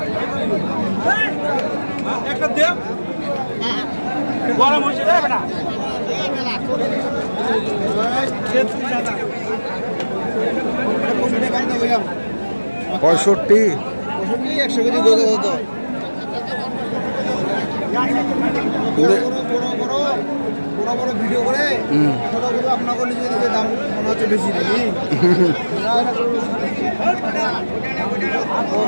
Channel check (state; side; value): inverted; both; correlation -1.00